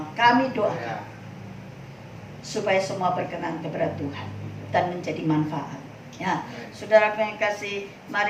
kami doakan supaya semua berkenan kepada Tuhan dan menjadi manfaat. Ya, saudara yang kasih,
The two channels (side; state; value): both; identical; correlation 1.00